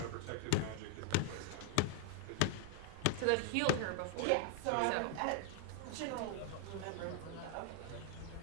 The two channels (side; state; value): both; different; correlation 0.00